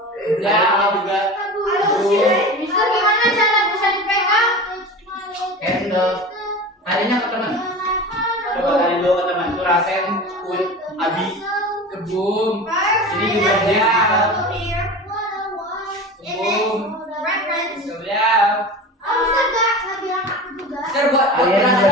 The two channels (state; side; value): normal; both; correlation 0.32